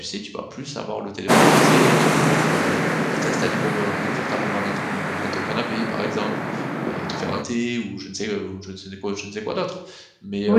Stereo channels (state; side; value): identical; both; correlation 1.00